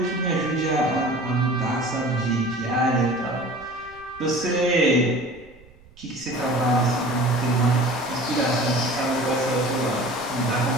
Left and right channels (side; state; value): right; noise; rumble, 25 dB below the sound